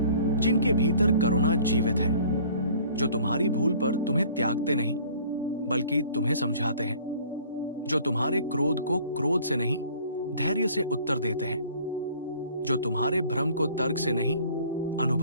जिनके भीतर करुणा जीवित है, जो तुम्हारी भूल पर तुम्हें त्यागते नहीं बल्कि तुम्हें समझाते हैं, जो तुम्हारे क्रोध को क्रोध से नहीं धैर्य से उत्तर देते हैं, जो तुम्हारे भ्रम को तर्क से नहीं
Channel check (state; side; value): inverted; both; correlation -0.52